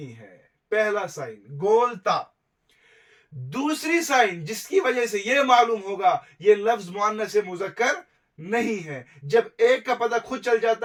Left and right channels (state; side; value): identical; both; correlation 1.00